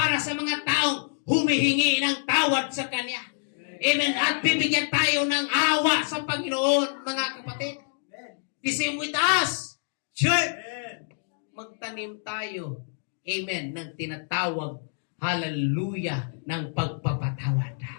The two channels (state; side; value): silent; right; digital silence